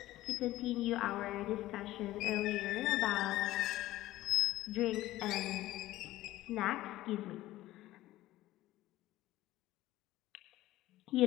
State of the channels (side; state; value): right; quieter; 15.9 dB